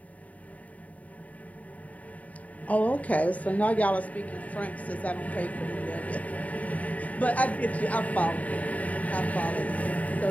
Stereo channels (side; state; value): right; late; 0.070 ms